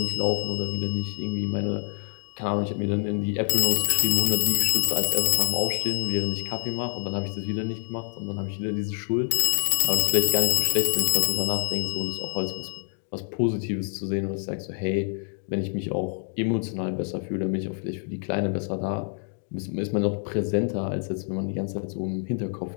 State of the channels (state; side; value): silent; right; 61 dB below the other